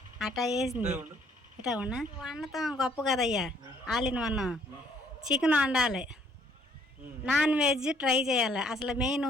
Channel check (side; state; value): both; normal; correlation 0.63